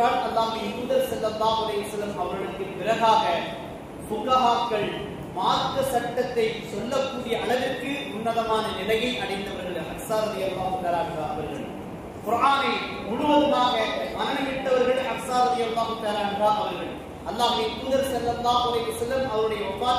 அல்லாஹ்வின் தூதர் ஸல்லல்லாஹு அலைஹி வஸல்லம் அவர்களுக்கு பிறகாக ஃபுகஹாக்கள் மார்க்க சட்டத்தை சொல்லக்கூடிய அளவிற்கு உன்னதமான நிலையை அடைந்தவர்கள் ஹப்ஸா ரலியல்லாஹு தஆலா அன்ஹா அவர்கள். குர்ஆனை முழுவதுமாக மனனமிட்டவர்கள் ஹப்ஸா ரலியல்லாஹு தஆலா அன்ஹா அவர்கள். அல்லாஹ்வின் தூதர் ஸல்லல்லாஹு அலைஹி வஸல்லம் அவருடைய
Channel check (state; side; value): identical; both; correlation 1.00